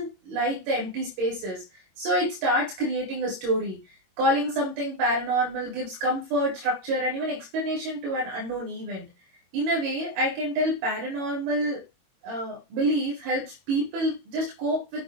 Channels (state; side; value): late; left; 22 ms